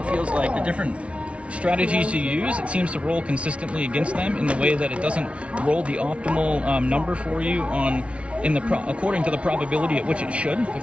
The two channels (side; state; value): left; late; 0.061 ms